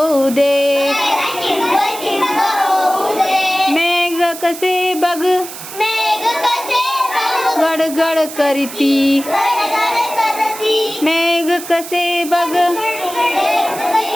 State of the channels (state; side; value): noise; right; hiss, 12 dB below the sound